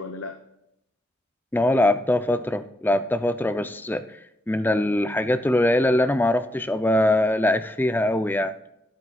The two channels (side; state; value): both; normal; correlation 0.80